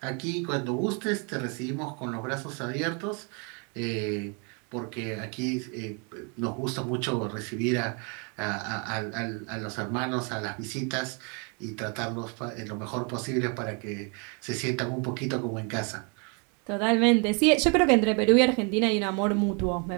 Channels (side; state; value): left; quieter; 35.5 dB